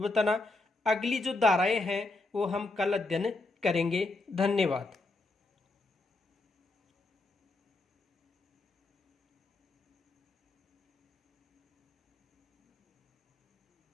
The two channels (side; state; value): right; quieter; 3.2 dB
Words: बताना। अगली जो धाराएं हैं वो हम कल अध्ययन करेंगे। धन्यवाद।